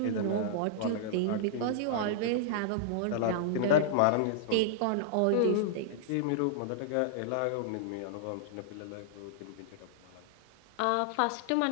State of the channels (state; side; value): different; both; correlation -0.01